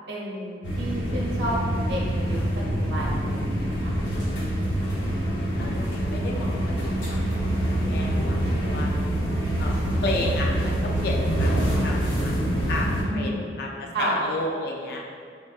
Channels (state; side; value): normal; both; correlation 0.74